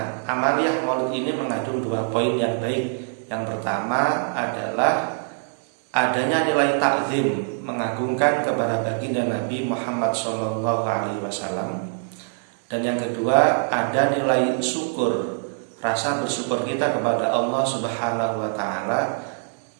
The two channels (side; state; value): left; silent; digital silence